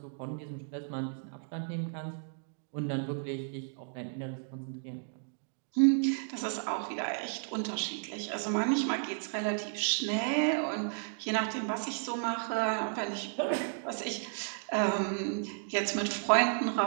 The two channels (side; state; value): left; silent; digital silence